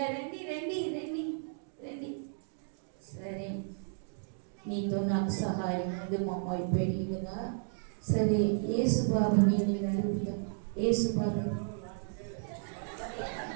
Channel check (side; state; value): left; silent; digital silence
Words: రండి రండి రండి రండి. సరే, నీతో నాకు సహాయం ఉంది, మా అమ్మాయి పెళ్ళి కదా. సరే యేసుబాబుని నేను అడుగుతా. యేసుబాబు